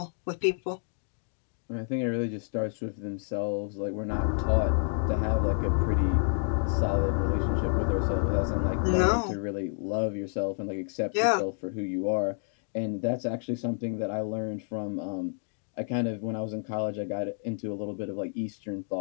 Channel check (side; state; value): right; silent; digital silence